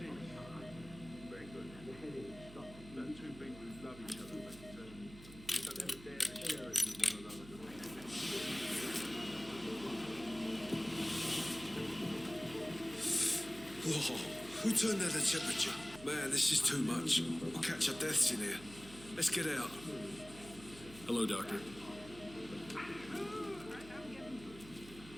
Very good. The heading stopped. No, two people who love each other, but don't ever dare to share it with one another. Whoa, who turned down the temperature? Man, this is too much. We'll catch our deaths in here. Let's get out. Hello, Doctor.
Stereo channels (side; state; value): right; noise; hum, 17 dB below the sound